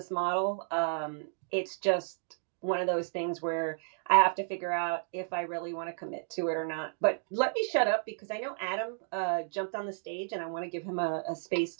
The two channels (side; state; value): left; silent; digital silence